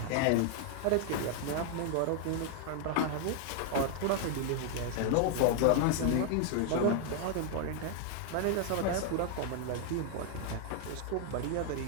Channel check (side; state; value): both; different; correlation 0.00